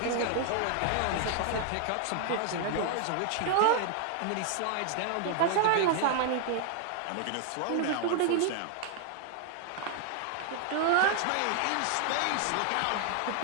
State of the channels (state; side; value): different; both; correlation 0.00